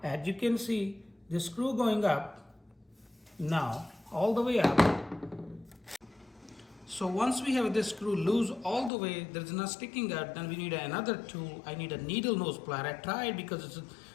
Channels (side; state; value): right; drops out; at 8.9 s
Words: As you can see, the screw going up now all the way up. So once we have this screw loose all the way, there's not sticking out, then we need another tool. I need a needle nose plier. I tried because it's